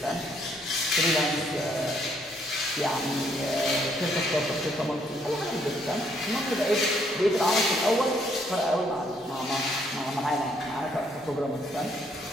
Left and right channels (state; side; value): normal; both; correlation 0.69